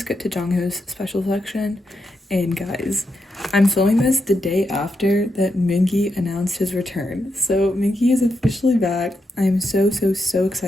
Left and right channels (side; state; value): both; normal; correlation 0.84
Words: to Jongho's special section. And guys, I'm filming this the day after that Mingi announced his return. So Mingi is officially back. I'm so